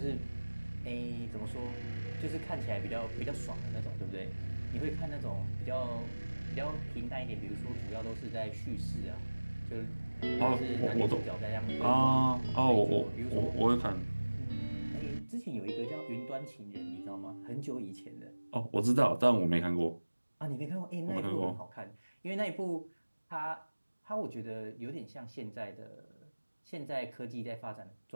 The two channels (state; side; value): inverted; both; correlation -1.00